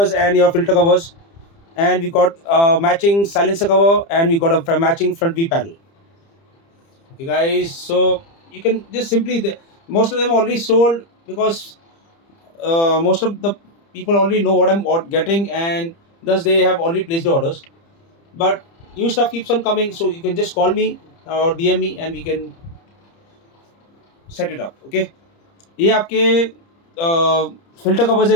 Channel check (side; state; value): right; late; 30 ms